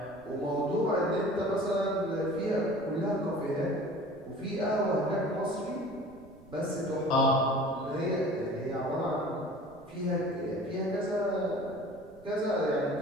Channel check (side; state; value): right; noise; rumble, 24 dB below the sound